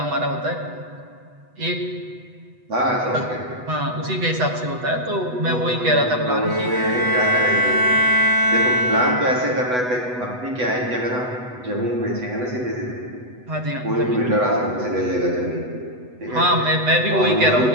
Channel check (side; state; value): left; late; 8.1 ms